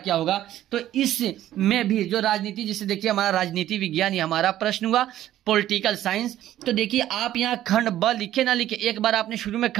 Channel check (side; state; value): left; quieter; 12.9 dB